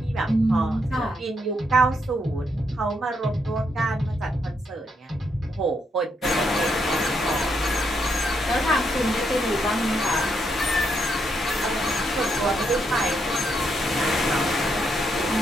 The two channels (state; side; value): normal; both; correlation 0.78